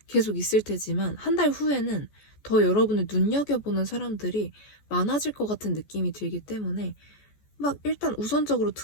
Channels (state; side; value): late; right; 14 ms